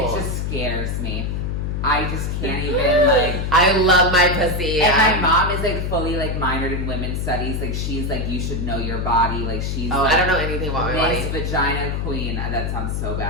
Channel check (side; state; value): left; noise; hum, 1 dB below the sound